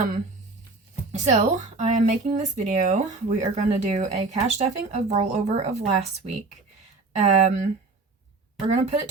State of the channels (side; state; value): left; quieter; 3.7 dB